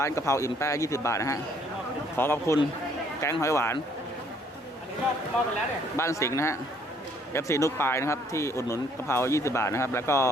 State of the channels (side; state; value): both; normal; correlation 0.63